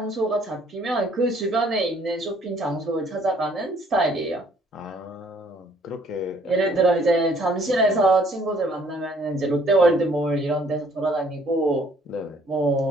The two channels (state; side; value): normal; both; correlation 0.61